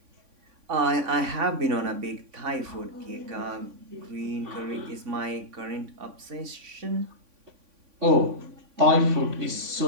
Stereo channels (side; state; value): left; late; 3.5 ms